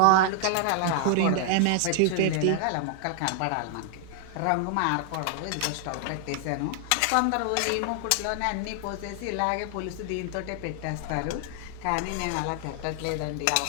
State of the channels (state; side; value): different; both; correlation 0.00